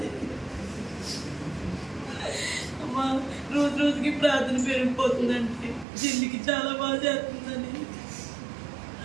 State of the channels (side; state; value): left; drops out; at 5.9 s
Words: రోజు రోజుకి ప్రార్థన పెరిగిపోతుందండి. జిల్లికి చాలా బాగా చేస్తుందని,